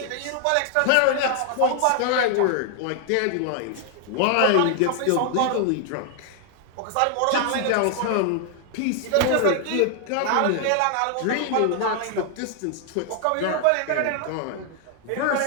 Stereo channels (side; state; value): both; different; correlation 0.00